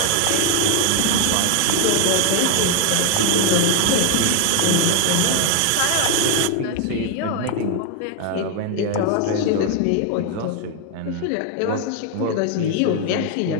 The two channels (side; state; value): both; different; correlation 0.00